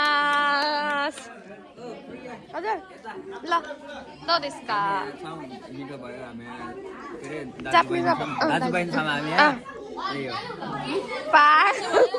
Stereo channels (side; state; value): both; identical; correlation 1.00